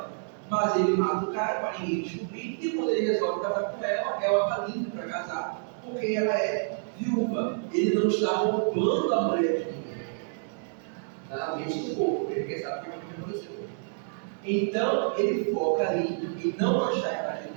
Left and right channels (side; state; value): left; silent; 59 dB below the other